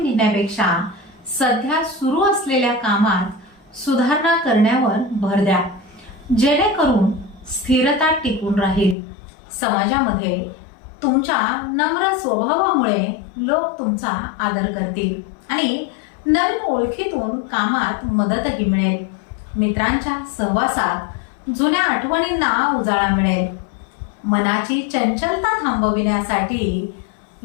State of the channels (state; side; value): drops out; right; at 9.0 s